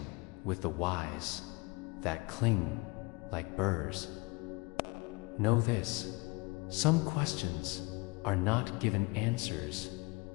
with the whys that cling like burrs, know this: some questions are not given answers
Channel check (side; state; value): right; quieter; 26.1 dB